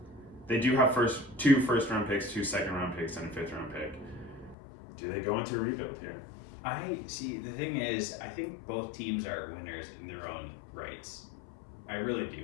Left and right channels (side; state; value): right; drops out; at 4.5 s